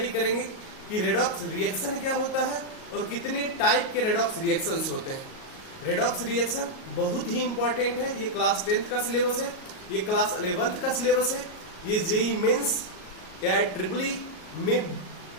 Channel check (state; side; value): late; right; 38 ms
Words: करेंगे कि रेडॉक्स रिएक्शन क्या होता है और कितने टाइप के रेडॉक्स रिएक्शंस होते हैं। रेडॉक्स रिएक्शन बहुत ही इंपॉर्टेंट है। ये क्लास 10th का सिलेबस है, ये क्लास 11th का सिलेबस है, ये जेई मेंस या ट्रिपली में